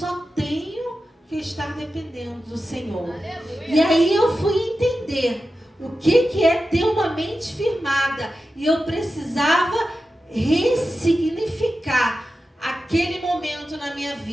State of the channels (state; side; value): normal; both; correlation 0.92